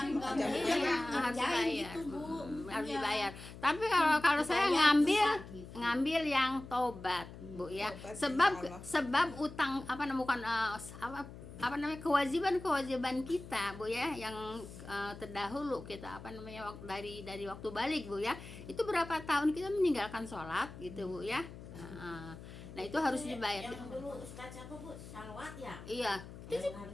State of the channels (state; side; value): noise; left; hum, 14 dB below the sound